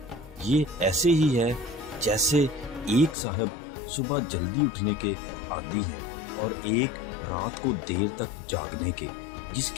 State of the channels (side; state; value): right; drops out; at 3.2 s